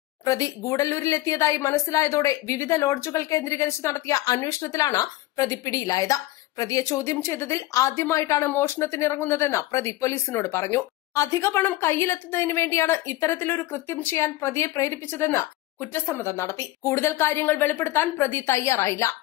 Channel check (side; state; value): right; quieter; 17.2 dB